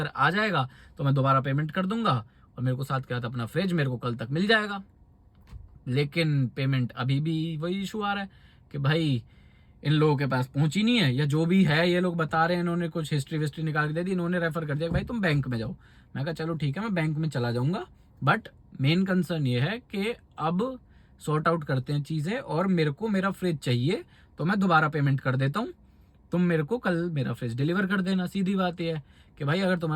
आ जाएगा तो मैं दोबारा पेमेंट कर दूंगा, और मेरे को साथ क्या था अपना फ्रिज, मेरे को कल तक मिल जाएगा। लेकिन पेमेंट अभी भी वही इशू आ रहा है कि भाई इन लोगों के पास पहुंची नहीं है, या जो भी है ये लोग बता रहे हैं, इन्होंने कुछ हिस्ट्री विस्ट्री निकाल के दे दी, इन्होंने रेफर कर दिया कि भाई तुम बैंक में जाओ। मैं कहा चलो ठीक है, मैं बैंक में चला जाऊंगा, बट मेन कंसर्न ये है कि अब सॉर्ट आउट करते हैं चीजें, और मेरे को मेरा फ्रिज चाहिए, तो मैं दोबारा पेमेंट कर देता हूँ, तुम मेरे को कल मेरा फ्रिज डिलीवर कर देना। सीधी बात यह है कि भाई अगर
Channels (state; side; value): identical; both; correlation 1.00